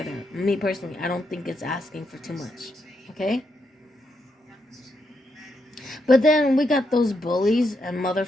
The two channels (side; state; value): both; normal; correlation 0.81